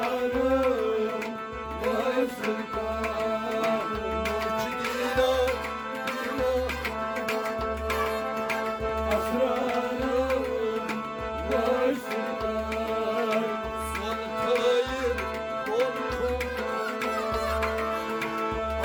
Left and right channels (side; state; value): both; identical; correlation 1.00